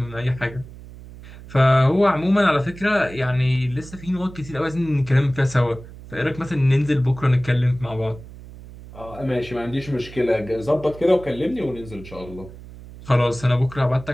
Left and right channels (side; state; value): right; noise; hum, 17 dB below the sound